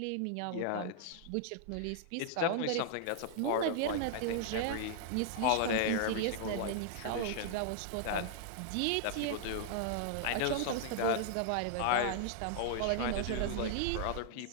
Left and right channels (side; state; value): both; different; correlation -0.01